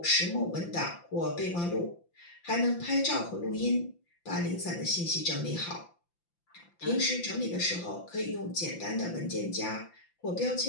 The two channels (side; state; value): right; late; 5.8 ms